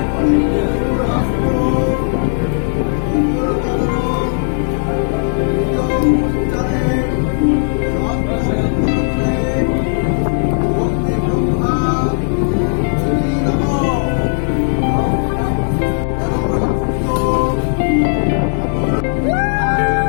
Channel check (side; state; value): right; silent; digital silence